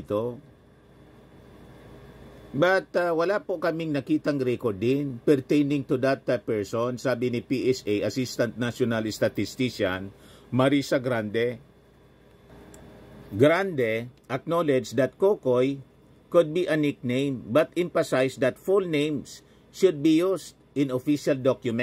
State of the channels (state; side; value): identical; both; correlation 1.00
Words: But wala po kaming nakitang record din pertaining to that person, sabi ni PSA Assistant National Statistician Marisa Grande. Grande acknowledged that Kokoy could be a nickname but emphasized that full names should be used in official